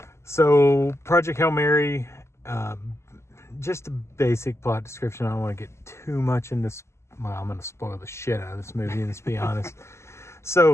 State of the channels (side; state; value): right; late; 0.13 ms